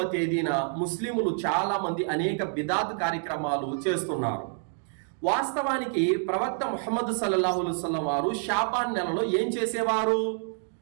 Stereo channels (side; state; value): left; silent; 60 dB below the other